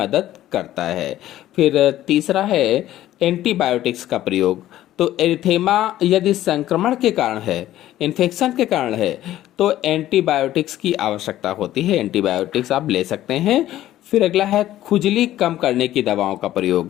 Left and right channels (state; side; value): quieter; right; 13.7 dB